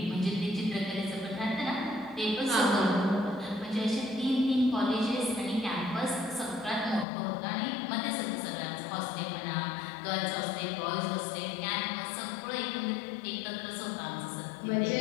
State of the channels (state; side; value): drops out; right; at 7.1 s